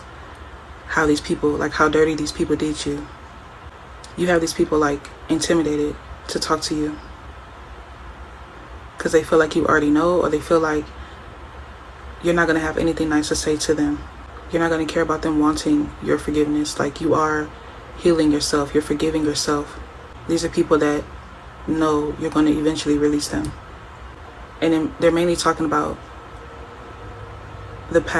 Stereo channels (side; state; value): both; identical; correlation 1.00